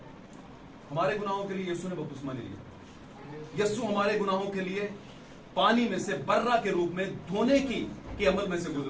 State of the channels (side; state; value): both; identical; correlation 1.00